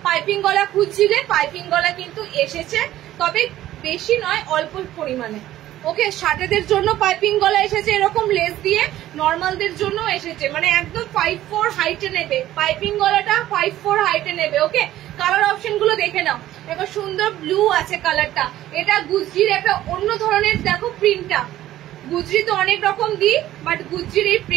পাইপিং গলা খুঁজছিলে, পাইপিং গলা কিন্তু এসেছে, তবে বেশি নয়, অল্প পরিমাণে। ওকে শার্টেদের জন্য পাইপিং গলা এসেছে এরকম লেস দিয়ে, নর্মালদের জন্য এসেছে, মানে একদম 5'4" হাইটে নেবে, পাইপিং গলাটা 5'4" হাইটে নেবে। ওকে কালার অপশন গুলো দেখে নাও, দেখো সুন্দর ব্লু আছে কালারটা। এটা গুজরির একটা অন্য ধরনের, দেখো প্রিন্টটা, গুজরি তো অনেক রকম দিই, বাট গুজরির এই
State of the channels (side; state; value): left; quieter; 13.9 dB